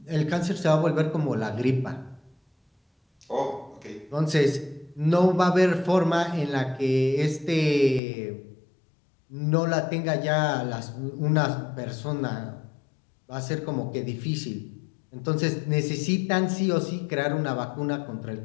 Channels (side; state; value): right; drops out; at 8.0 s